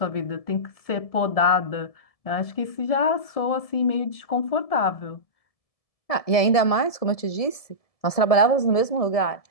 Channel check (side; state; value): right; late; 1.7 ms